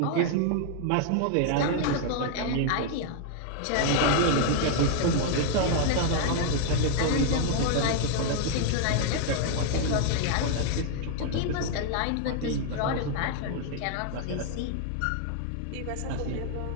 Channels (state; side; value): different; both; correlation 0.00